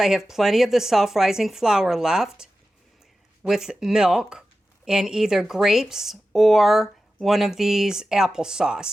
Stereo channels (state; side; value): normal; both; correlation 0.93